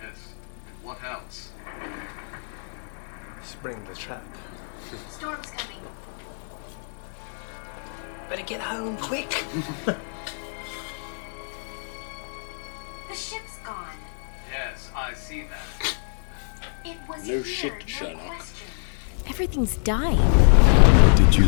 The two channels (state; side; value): silent; right; digital silence